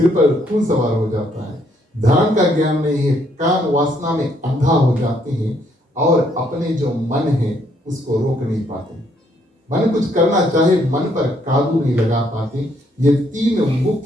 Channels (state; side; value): normal; both; correlation 0.70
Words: पर खून सवार हो जाता है। धर्म का ज्ञान नहीं है, काम वासना में अंधा हो जाते हैं, और अपने जो मन है उसको रोक नहीं पाते। मन कुछ करना चाहे, मन पर काबू नहीं लगा पाते। ये तीन